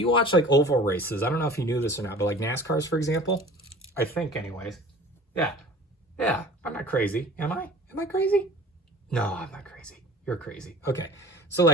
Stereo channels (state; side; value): normal; both; correlation 0.44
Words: watch like oval races, I don't know if you knew this or not, but like NASCARs, for example, I think anyways. Yeah, I'm not crazy. Am I? Am I crazy? No, I'm not crazy. You're crazy. Okay, so